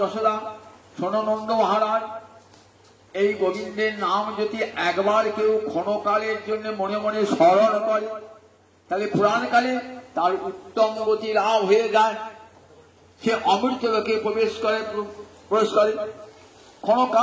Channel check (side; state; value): both; identical; correlation 1.00